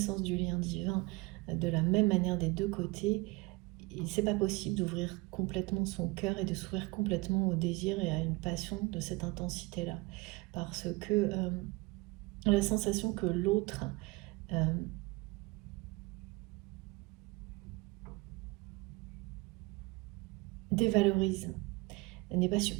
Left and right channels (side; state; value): left; quieter; 24.3 dB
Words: du lien divin de la même manière des deux côtés, c'est pas possible d'ouvrir complètement son cœur et de s'ouvrir complètement au désir et à une passion de cette intensité-là. Parce que la sensation que l'autre dévalorise n'est pas